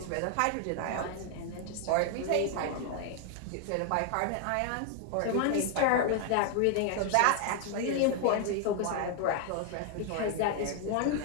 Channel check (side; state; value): both; different; correlation 0.00